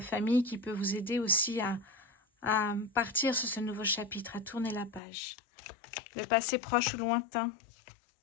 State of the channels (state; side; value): drops out; right; at 5.0 s